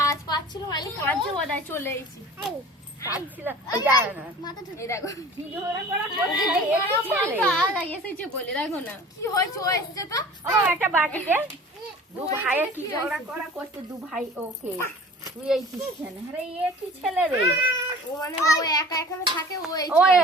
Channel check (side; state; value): both; normal; correlation 0.43